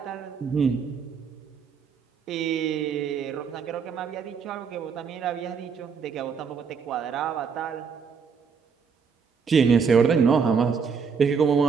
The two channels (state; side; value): quieter; left; 5.9 dB